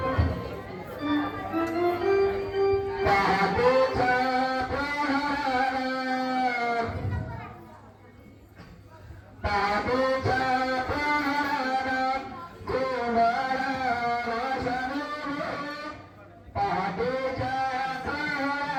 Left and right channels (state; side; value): identical; both; correlation 1.00